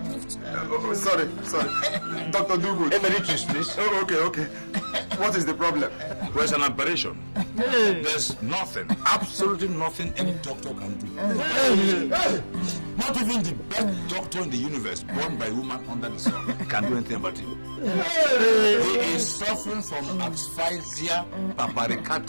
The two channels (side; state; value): both; inverted; correlation -1.00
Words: Sorry. Dr. Dugood. Emeritus, please. Oh, okay. What is the problem? There's an operation. There's nothing, absolutely nothing any doctor can do. Not even the best doctor in the universe, born by a woman under the sun, can do anything about it. He is suffering from asphyxia